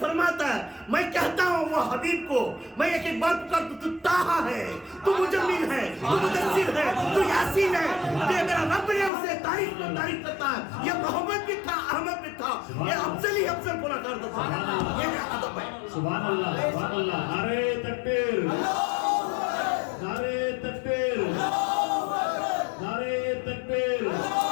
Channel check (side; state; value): right; drops out; at 9.1 s